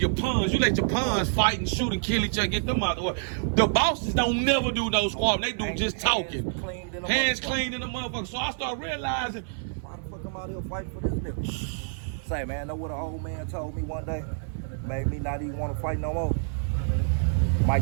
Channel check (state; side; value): silent; left; 60 dB below the other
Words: pawns, you let your pawns fight and shoot and kill each other, get them out the way. The bosses don't never do no squabbling. They do just talking. Hands clean in the motherfucker. So I start realizing, Why the fuck I'm out here fighting for this nigga? Say, man, know what an old man told me one day? Made me not even want to fight no more.